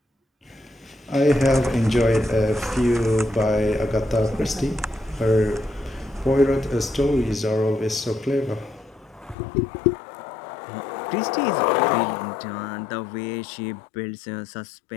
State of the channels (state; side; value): drops out; right; at 9.3 s